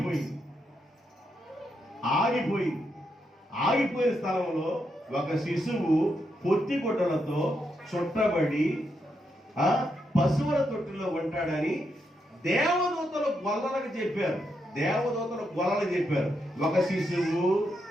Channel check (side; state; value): both; normal; correlation 0.82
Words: ఆగిపోయిన స్థలంలో ఒక శిశువు పొత్తిగుడ్డలతో చుట్టబడి పశువుల తొట్టిలో ఉంటాడని దేవదూతలు గొల్లలకు చెప్పారు. ఒక శిశువు